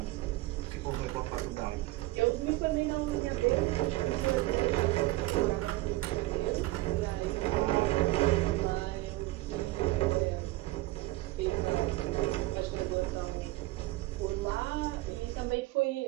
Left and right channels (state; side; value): quieter; left; 19.1 dB